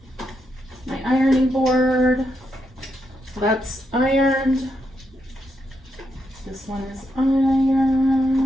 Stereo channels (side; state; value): both; normal; correlation 0.81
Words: my ironing board. That's ironed. This one is